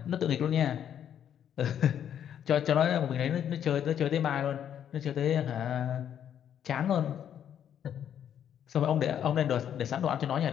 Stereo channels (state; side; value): quieter; right; 9.5 dB